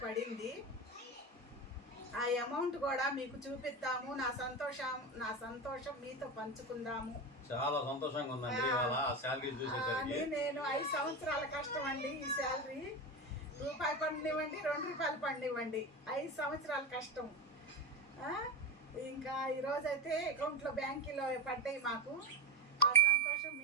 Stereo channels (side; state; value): both; normal; correlation 0.19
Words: పడింది. ఆ అమౌంట్ కూడా మీకు చూపిద్దాము. నా సంతోషం మీతో పంచుకుందాము. చాలా సంతోషంగా ఉందండి. నేను 5 సంవత్సరాల కష్టం అండి. ఈ శాలరీ రూపాయి పండివ్వండి, 2 రూపాయలు పండివ్వండి, 5 సంవత్సరాల కష్టం. ఇంకా ఈరోజైతే అకౌంట్లో బ్యాంకులో పడ్డాయి మాకు. ఆ సంతోషం